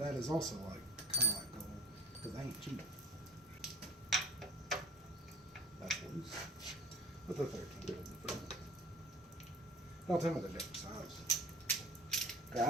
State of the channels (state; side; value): normal; both; correlation 0.44